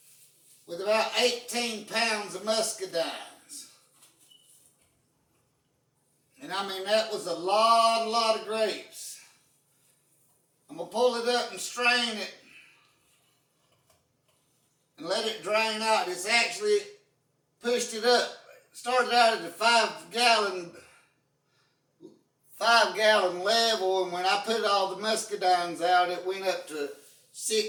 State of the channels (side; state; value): both; identical; correlation 1.00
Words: with about 18 pounds of muscadines. And I mean, that was a lot of grapes. I'm going to pull it up and strain it and let it drain out. It's actually pushed it up. It started out at the 5 gallon level, and when I put all the muscadines out, it went up to